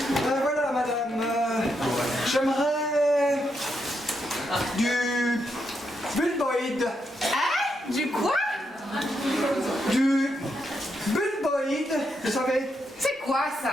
Voilà madame. J'aimerais du bulboïde. Hein? Du quoi? Du bulboïde, vous savez. C'est quoi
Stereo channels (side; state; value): both; normal; correlation 0.81